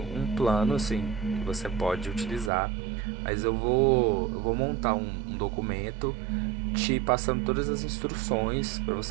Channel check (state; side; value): drops out; left; at 2.5 s